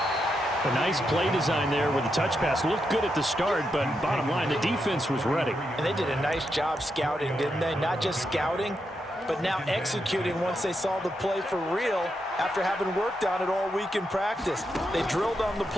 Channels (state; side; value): normal; both; correlation 0.84